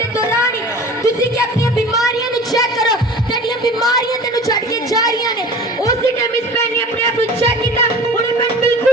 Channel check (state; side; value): normal; both; correlation 0.40